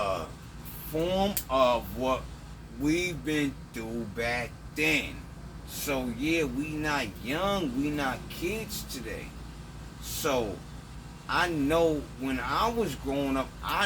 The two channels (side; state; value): both; identical; correlation 1.00